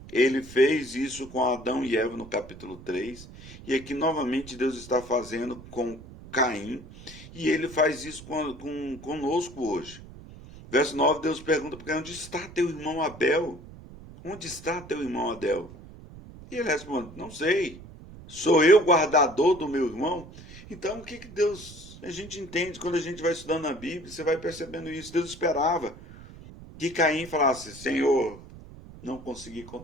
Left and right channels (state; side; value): noise; right; rumble, 17 dB below the sound